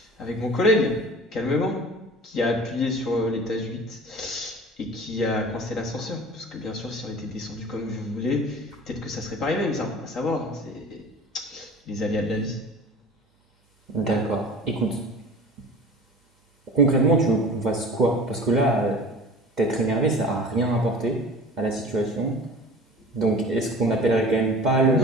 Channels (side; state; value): both; normal; correlation 0.41